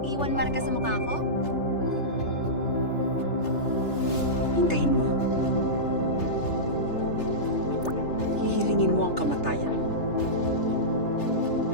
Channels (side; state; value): right; late; 3.3 ms